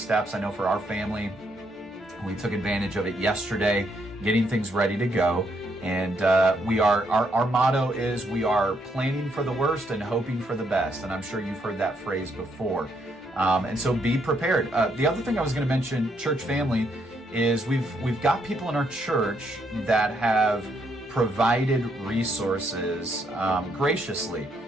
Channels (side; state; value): both; normal; correlation 0.74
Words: I know for our family, we took advantage of it yesterday, getting things ready to go. And our motto is we are planning for the worst and hoping for the best. And I'm sure you've heard that phrase before. And so be prepared. The other thing I was going to mention, church family, is we've got people in our church that have provided resources graciously.